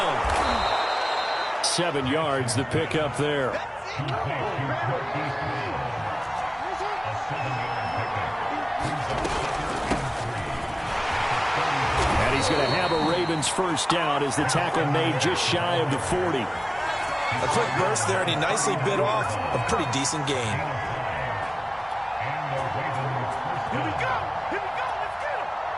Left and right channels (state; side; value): identical; both; correlation 1.00